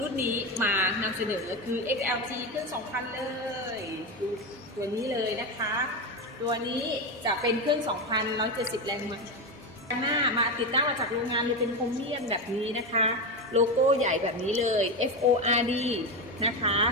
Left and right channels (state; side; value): normal; both; correlation 0.15